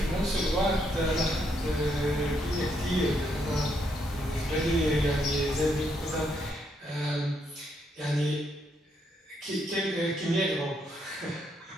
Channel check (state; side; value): normal; both; correlation 0.75